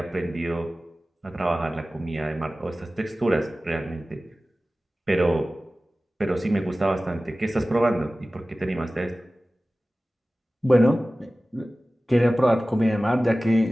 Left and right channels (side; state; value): both; normal; correlation 0.97